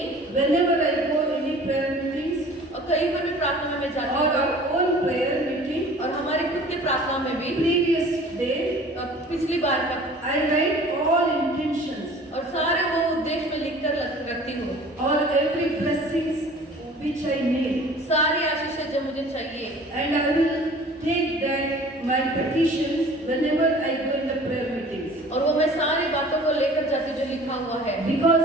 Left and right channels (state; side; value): normal; both; correlation 0.47